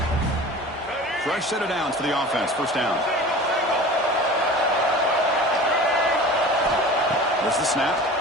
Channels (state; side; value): normal; both; correlation 0.38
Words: Fresh set of downs for the offense. 1st down. There's the snap.